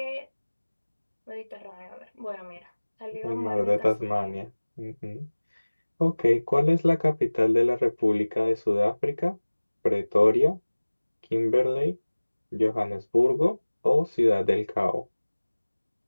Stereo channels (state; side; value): inverted; both; correlation -1.00